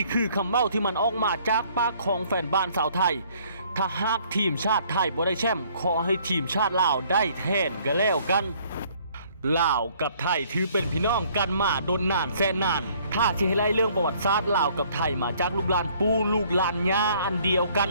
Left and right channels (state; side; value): inverted; both; correlation -0.60